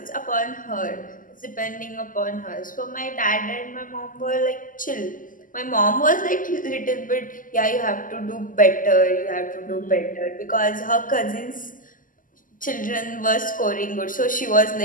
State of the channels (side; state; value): right; late; 0.39 ms